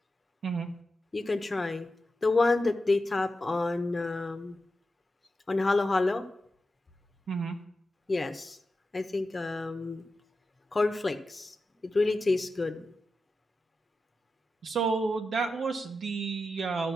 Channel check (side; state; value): both; normal; correlation 0.91